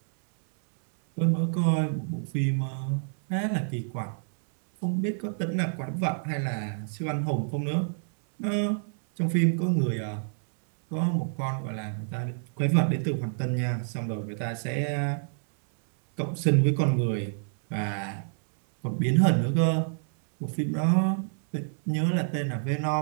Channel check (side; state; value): left; silent; 59 dB below the other